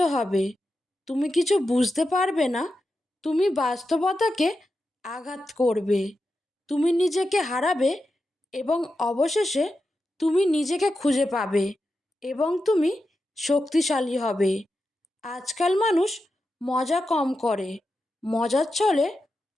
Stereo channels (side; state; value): both; normal; correlation 0.89